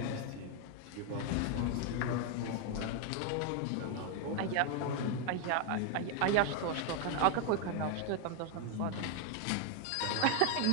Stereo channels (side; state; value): both; different; correlation 0.01